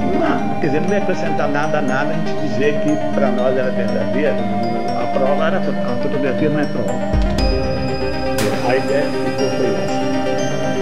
Não, quer dizer, não ia acrescentar nada a gente dizer que para nós era verdadeira. A prova era, a fotografia não é prova. A ideia que ficou foi essa.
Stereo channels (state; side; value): identical; both; correlation 1.00